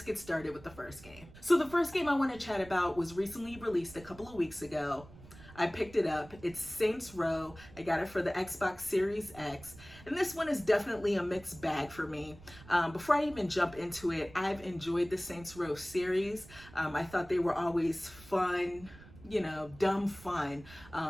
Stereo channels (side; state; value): right; noise; rumble, 19 dB below the sound